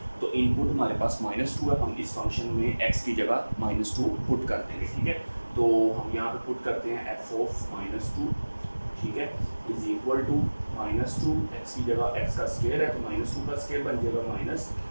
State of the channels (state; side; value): inverted; both; correlation -1.00